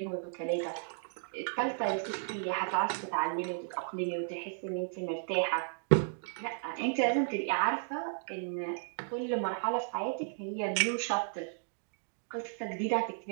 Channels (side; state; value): left; silent; digital silence